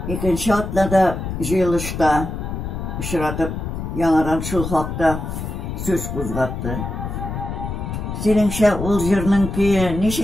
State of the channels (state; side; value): noise; left; rumble, 5 dB below the sound